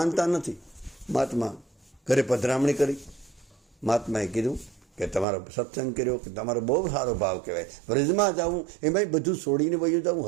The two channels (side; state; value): left; drops out; at 5.2 s